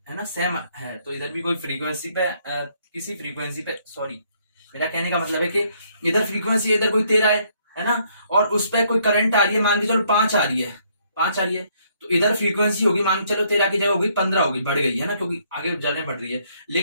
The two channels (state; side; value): inverted; both; correlation -0.68